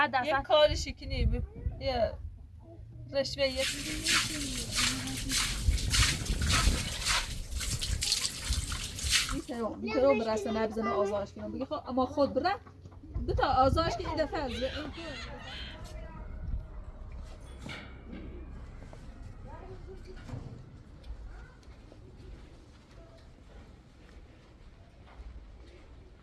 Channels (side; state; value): both; identical; correlation 1.00